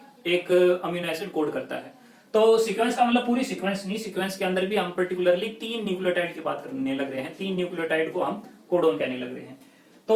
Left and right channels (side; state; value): both; identical; correlation 1.00